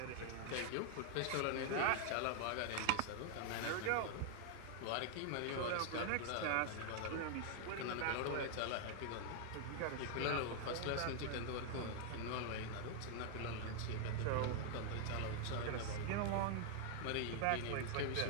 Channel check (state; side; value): different; both; correlation 0.00